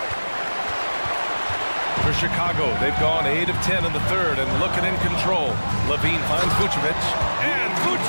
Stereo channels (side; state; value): both; inverted; correlation -1.00